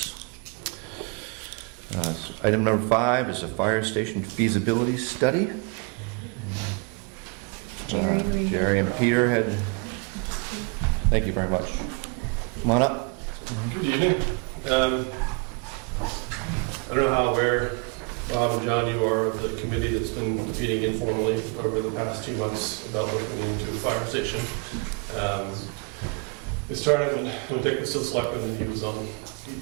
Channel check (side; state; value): left; quieter; 33.8 dB